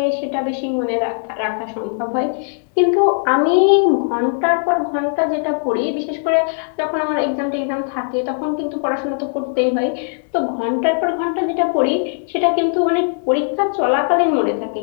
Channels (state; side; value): silent; right; 64 dB below the other